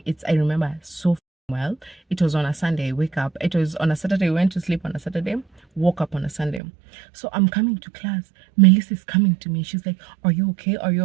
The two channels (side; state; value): left; drops out; at 6.6 s